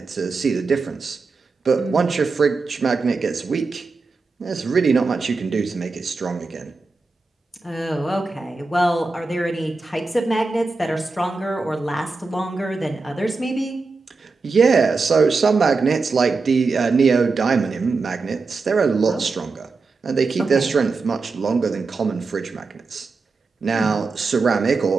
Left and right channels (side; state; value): left; quieter; 4.1 dB